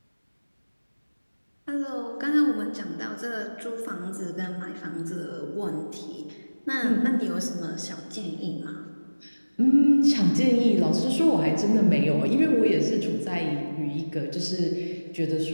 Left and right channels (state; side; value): inverted; both; correlation -1.00